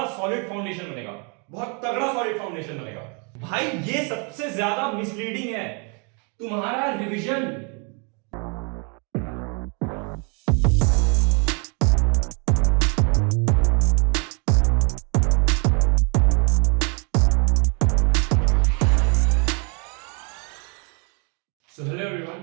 सॉलिड फाउंडेशन बनेगा, बहुत तगड़ा सॉलिड फाउंडेशन बनेगा। भाई ये सबसे ज्यादा मिसलीडिंग है, तुम्हारा revision. So hello everyone,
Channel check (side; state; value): left; quieter; 35.5 dB